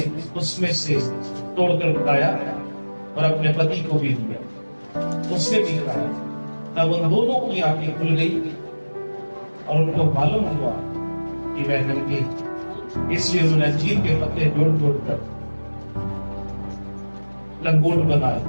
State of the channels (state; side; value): inverted; both; correlation -1.00